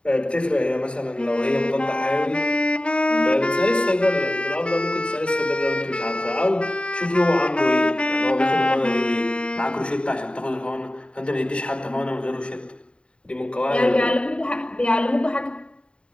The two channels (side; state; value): right; late; 0.055 ms